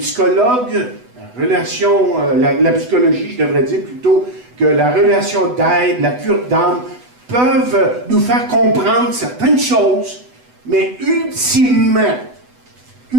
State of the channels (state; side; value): late; left; 8.1 ms